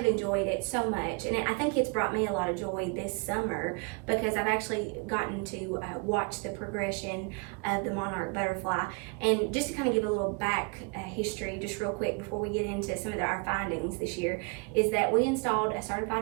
enjoyed it so much. And I think it's brought me a lot of joy this summer because I've actually gotten to watch the progression of the Monarch Butterfly. And just to kind of give a little back history just real quick before we get into some of our findings this year, is that we installed a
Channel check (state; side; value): quieter; left; 33.7 dB